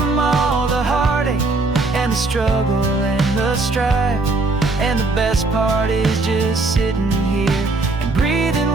all the heartache and the struggle and the strife. And the best part is just sitting here and breathing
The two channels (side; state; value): left; quieter; 3.4 dB